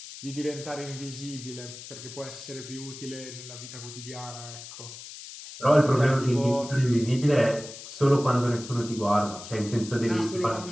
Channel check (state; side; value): noise; left; hiss, 13 dB below the sound